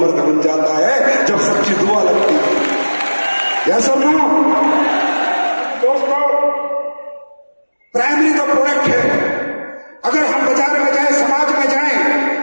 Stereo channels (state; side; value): inverted; both; correlation -1.00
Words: ऐसा ना दोस्तों, प्राइमरी तो प्रोडक्ट है। अगर हम बाजार में जाएं, समाज में